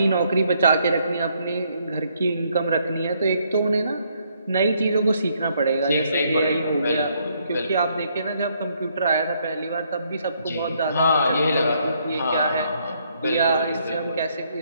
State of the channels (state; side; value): inverted; both; correlation -0.71